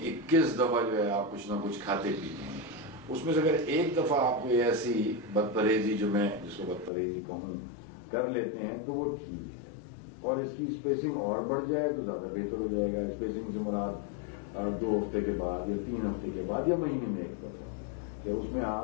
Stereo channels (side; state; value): right; drops out; at 6.9 s